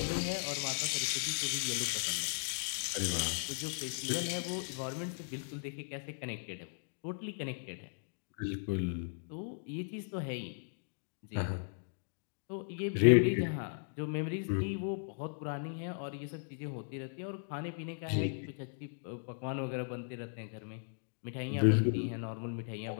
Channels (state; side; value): silent; right; digital silence